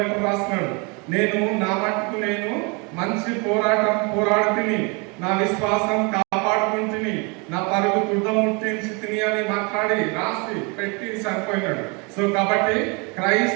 రాస్తున్నాడు, నేను నా మట్టుకు నేను మంచి పోరాటం పోరాడుతుని, నా విశ్వాసం కాపాడుకుంటుని, నా పరుగు తుడముట్టించి తిని అని మాట్లాడి రాసి పెట్టి చనిపోయినాడు. సో కాబట్టి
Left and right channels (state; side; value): quieter; left; 31.1 dB